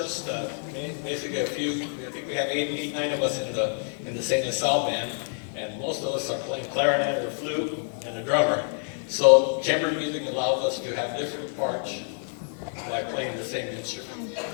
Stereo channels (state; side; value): silent; right; 60 dB below the other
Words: basically a few. I think we have eight, 9 of us in the St. LaSalle Band, and most of us us are playing clarinet or flute and a drummer. So chamber music allows us to have different parts by playing the same instrument.